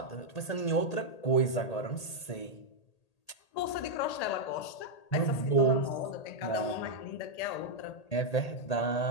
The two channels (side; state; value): right; late; 1.8 ms